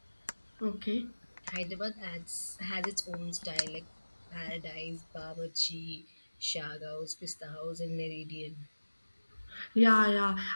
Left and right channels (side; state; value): both; inverted; correlation -1.00